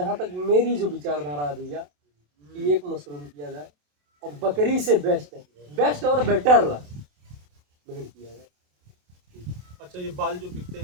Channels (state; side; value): late; left; 27 ms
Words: तक मेरी जो विचारधारा है भैया कि एक मशरूम किया जाए और बकरी से बेस्ट और बेटर भेड़ किया जाए। अच्छा ये बाल जो बिकते